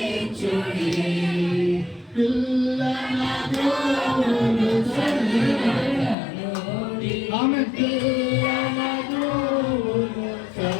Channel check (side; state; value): right; drops out; at 6.2 s